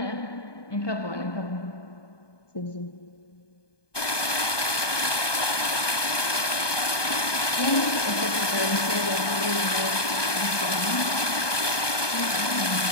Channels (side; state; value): right; late; 1.2 ms